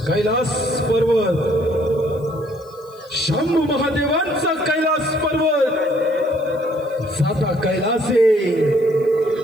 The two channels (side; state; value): left; noise; hiss, 29 dB below the sound